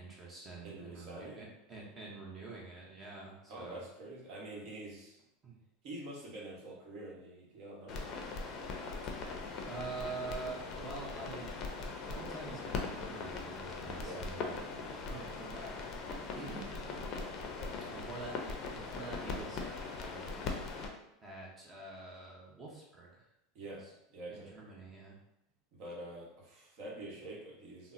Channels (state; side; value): normal; both; correlation 0.33